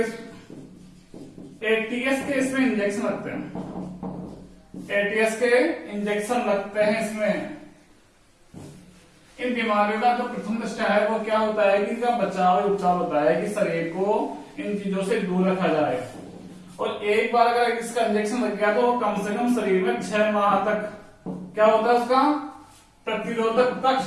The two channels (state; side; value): identical; both; correlation 1.00